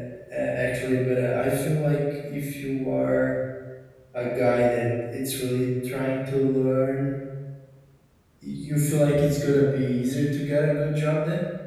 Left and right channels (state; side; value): identical; both; correlation 1.00